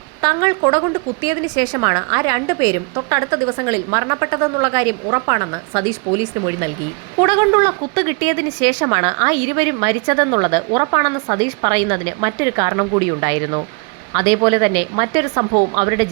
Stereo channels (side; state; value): left; quieter; 31.8 dB